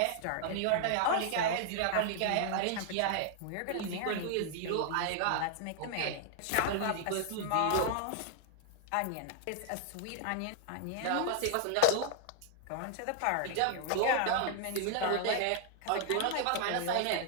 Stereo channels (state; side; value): different; both; correlation 0.00